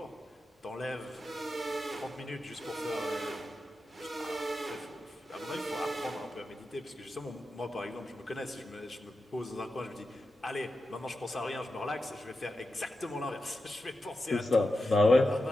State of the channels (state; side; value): normal; both; correlation 0.90